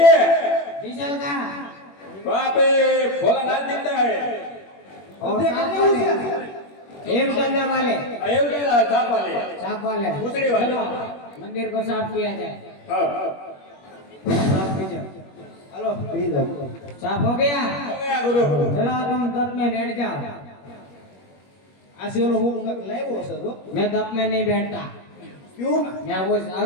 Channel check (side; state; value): right; late; 21 ms